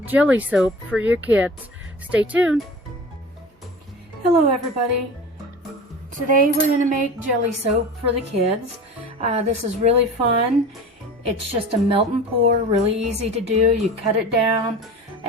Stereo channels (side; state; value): both; normal; correlation 0.37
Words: jelly soap for your kids. Stay tuned. Hello everybody. Today we're going to make jelly soap for the kids. This is really fun. It's just a melt and pour, really easy to do. You cut it down